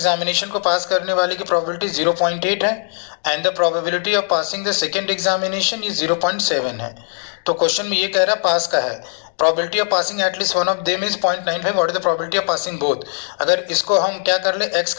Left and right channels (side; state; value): right; silent; digital silence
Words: को पास करने वाले की प्रोबेबिलिटी 0.8 है and the probability of passing the second examination ये 0.7 है। तो क्वेश्चन में ये कह रहा है पास का है, probability of passing at least one of them is 0.95। What is the probability of passing both. अगर इसको हम क्या कर ले, एक्स